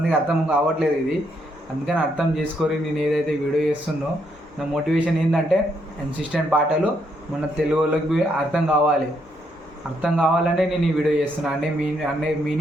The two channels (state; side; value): normal; both; correlation 0.75